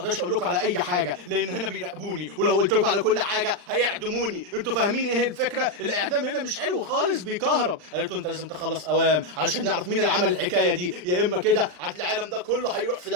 اقول لكم على اي حاجه لان هنا بيراقبوني، ولو قلت لكم على كل حاجه هيعدموني. انتوا فاهمين ايه الفكره؟ الاعدام هنا مش حلو خالص، بيكهرب. قالت له انت لازم تخلص اوام علشان نعرف مين اللي عمل الحكايه دي، يا اما كده العالم ده كله هيروح في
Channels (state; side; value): late; left; 39 ms